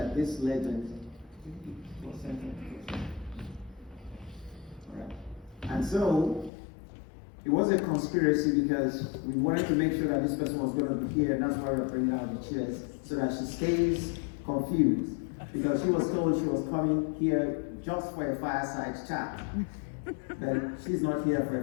this legend was centered. All right. And so it was a conspiracy because we wanted to make sure that this person was going to be here, and that's why we're bringing out the chairs, so that she stays confused. Because she was told she was coming here just for a fireside chat. But she's not here for a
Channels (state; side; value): drops out; right; at 6.5 s